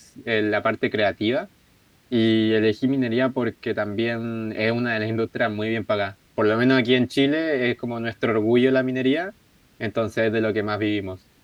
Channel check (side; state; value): both; identical; correlation 1.00